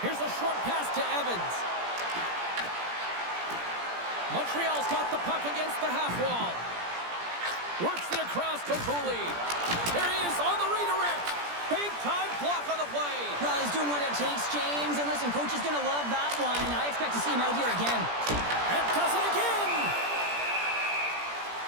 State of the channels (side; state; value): left; late; 17 ms